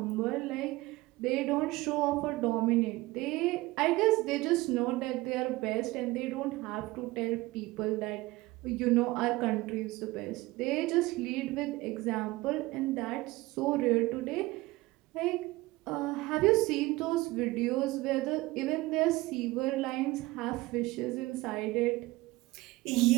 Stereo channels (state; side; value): quieter; left; 20.2 dB